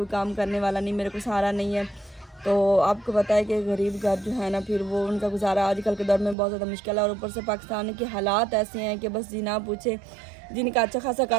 काम करने वाला नहीं, मेरे को सहारा नहीं है। तो आपको पता है कि गरीब घर जो है ना फिर वो उनका गुजारा आजकल के दौर में बहुत ज़्यादा मुश्किल है। और ऊपर से पाकिस्तान के हालात ऐसे हैं कि बस जी ना पूछे, जिनका अच्छा खासा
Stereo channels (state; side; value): drops out; left; at 6.4 s